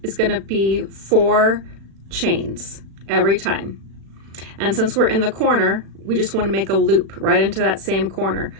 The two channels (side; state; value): left; late; 36 ms